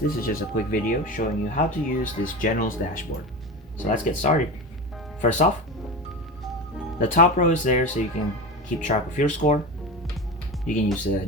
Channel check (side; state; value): both; normal; correlation 0.26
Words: is just a quick video showing you how to use this General's dashboard. So let's get started. First off, the top row is there so you can keep track of your score. You can use a